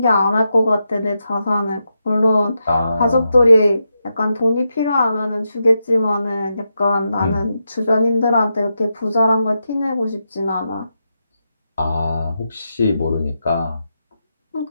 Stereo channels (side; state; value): both; inverted; correlation -0.86